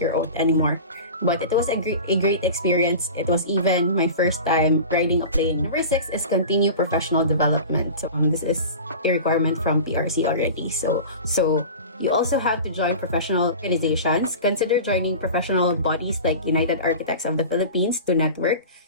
oath anymore. But it was a great experience. It was even my first time riding a plane. Number 6 is continue professional development. So this is a requirement from PRC already. So you also have to join professional organizations. Consider joining professional bodies like United Architects of the Philippines to network,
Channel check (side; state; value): both; inverted; correlation -0.34